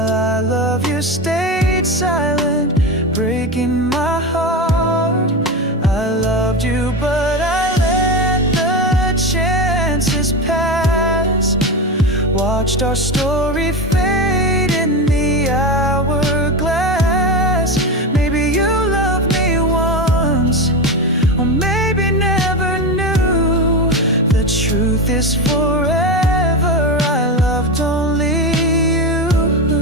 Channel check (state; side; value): normal; both; correlation 0.19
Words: I love you stayed silent, breaking my heart. I loved you but I let the chances pass, watched our story fade in the hourglass. Maybe you loved me once, or maybe never knew. The truth is forever I loved only you.